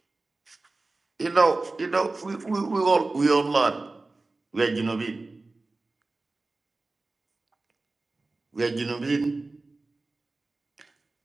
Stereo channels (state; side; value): quieter; left; 3.3 dB